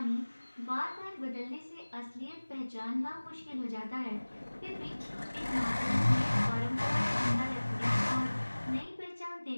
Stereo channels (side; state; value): both; inverted; correlation -1.00